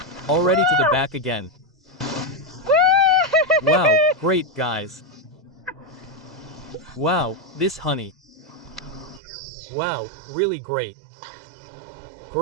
Already to the back again. Wow, great guys. Wow, this honey. Wow, really great.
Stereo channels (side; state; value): left; drops out; at 9.2 s